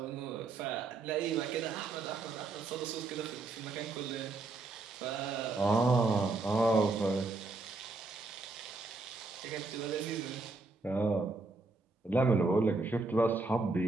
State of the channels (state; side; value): quieter; left; 3.6 dB